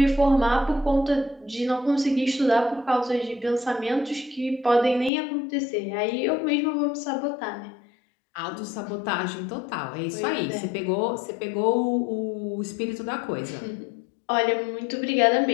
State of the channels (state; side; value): drops out; right; at 5.1 s